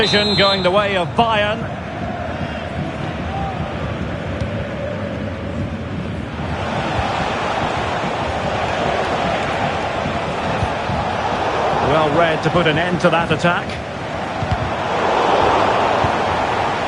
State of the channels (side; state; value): both; identical; correlation 1.00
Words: going the way of Bayern. Well read to put an end to that attack.